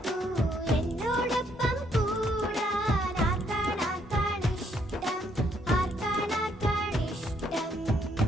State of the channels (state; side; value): normal; both; correlation 0.70